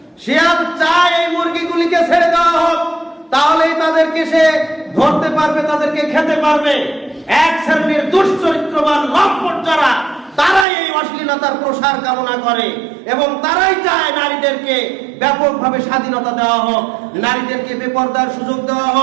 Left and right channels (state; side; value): drops out; left; at 10.7 s